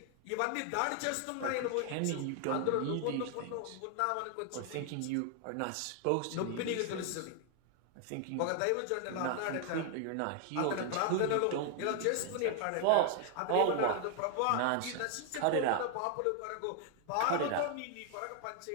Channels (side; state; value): both; different; correlation 0.00